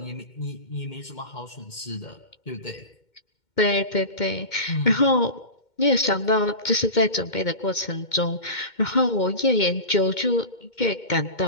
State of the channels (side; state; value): right; late; 2.1 ms